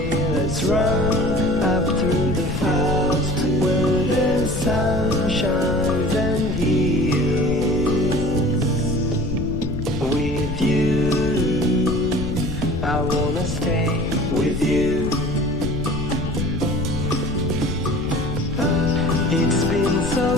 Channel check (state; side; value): noise; left; rumble, 6 dB below the sound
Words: Let's run up through the fields where the sun shines and heals. With you, I wanna stay with you. It's been so